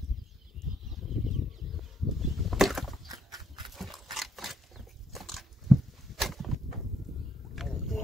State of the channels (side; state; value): both; normal; correlation 0.73